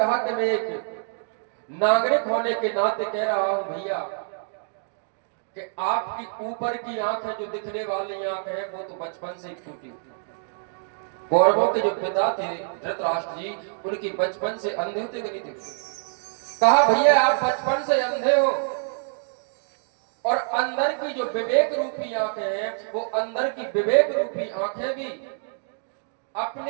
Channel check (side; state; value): left; silent; digital silence